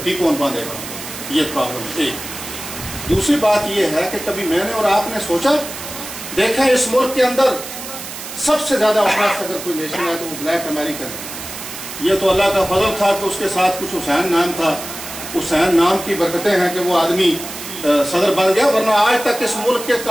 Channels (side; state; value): right; noise; hiss, 10 dB below the sound